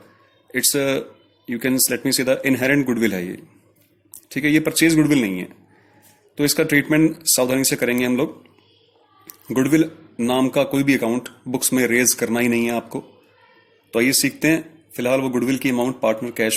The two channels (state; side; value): identical; both; correlation 1.00